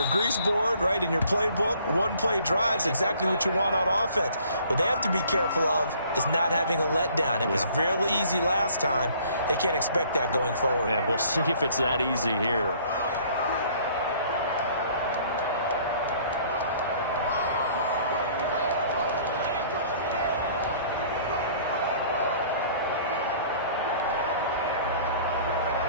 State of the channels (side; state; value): both; inverted; correlation -0.56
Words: grease board, right, in your playbook, 1-play drive is exactly what you want on offense. What they have to be careful of is not having a letdown. It was real easy last time. They can't expect that going forward. Yeah, we'll see if it's that easy here.